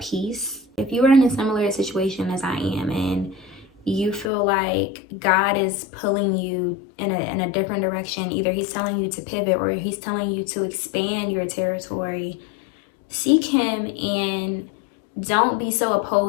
peace. If you are in a similar situation as I am and you feel like God is pulling you in a different direction, either he's telling you to pivot or he's telling you to expand your territory, seek him and don't be so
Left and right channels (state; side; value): drops out; right; at 4.3 s